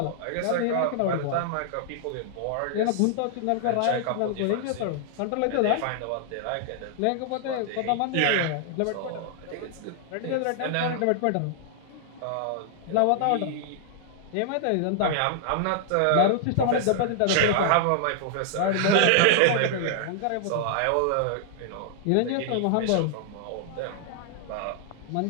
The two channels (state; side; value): different; both; correlation -0.01